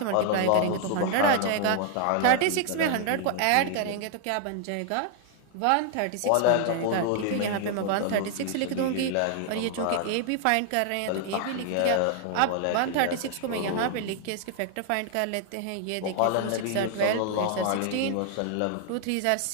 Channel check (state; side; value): different; both; correlation 0.00